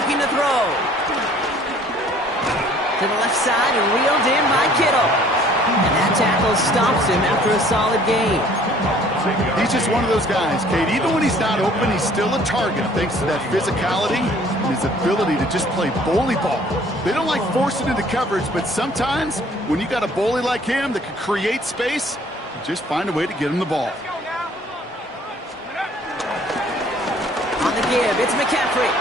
to throw. To the left side and reeled in by Kittle. And that tackle stops him after a solid gain. He's just one of those guys, Kate. Even when he's not open, he's still a target thanks to that physicality and his ability to just play bully ball. They don't like forcing into coverage, but sometimes when you got a bully like him that can create space, you just find a way to get him the ball. On the give, it's McCaffrey.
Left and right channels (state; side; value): normal; both; correlation 0.56